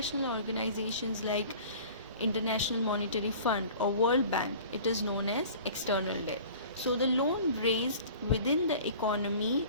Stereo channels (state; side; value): inverted; both; correlation -0.44